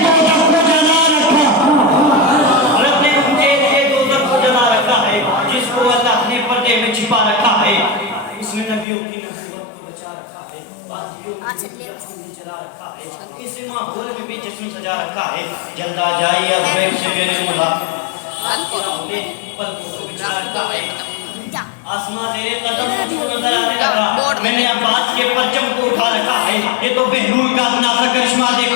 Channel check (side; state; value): right; drops out; at 8.8 s